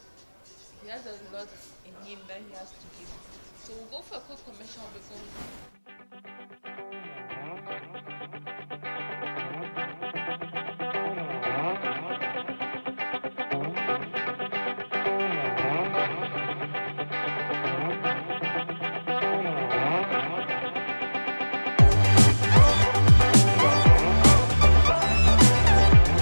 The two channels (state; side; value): inverted; both; correlation -1.00